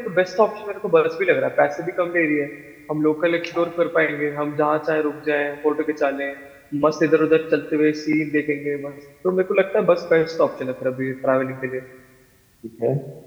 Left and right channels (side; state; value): both; identical; correlation 1.00